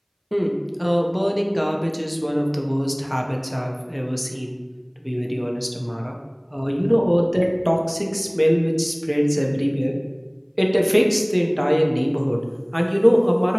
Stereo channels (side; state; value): both; identical; correlation 1.00